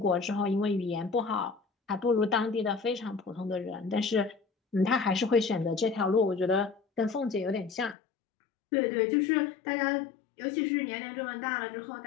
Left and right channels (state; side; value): drops out; right; at 8.0 s